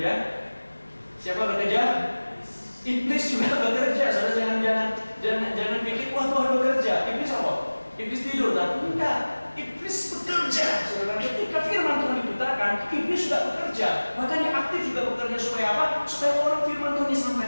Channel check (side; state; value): both; inverted; correlation -1.00